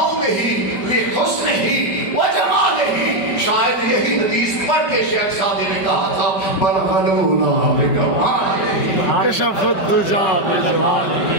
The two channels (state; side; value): late; right; 5.2 ms